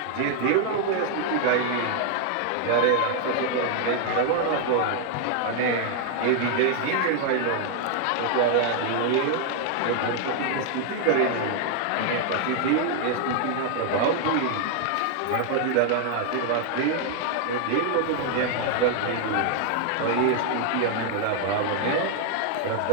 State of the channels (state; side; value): different; both; correlation 0.00